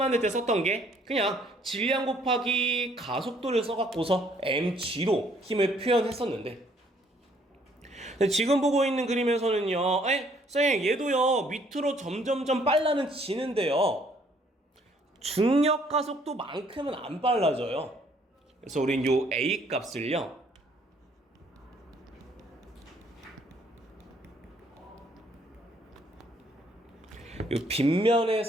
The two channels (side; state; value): both; normal; correlation 0.64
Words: 때 썼던 게 그냥 질량 곱하기 가속도를 써갖고서 mg로 힘을 표현했었는데 지금 보고 있는 그림에서는요 쌤 얘도요 밑으로 점점점 빨라는 지는데요 중력 가속도만큼은 안 빨라져요. 그래서 우린 요 a 값을요